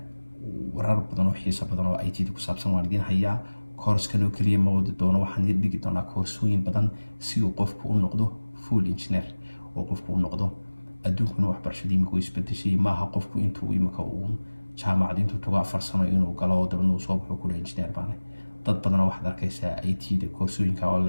warar badan oo xiiso badan oo IT ku saabsan waan idin hayaa. course-kan oo kaliya ma wadi doono, waxaan idin dhigi doonaa koorsooyin badan si uu qofku u noqdo full engineer oo qofku u noqdo adduunkuna waxbarashadii imika isbedeshay maaha qofku intuu imika uu jaamacad intuu tago 4 sano inuu galo dabadna uu soo baxo kula engineer baana. dad badan waxaad arkaysaa IT-da koorsooyinka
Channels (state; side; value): inverted; both; correlation -1.00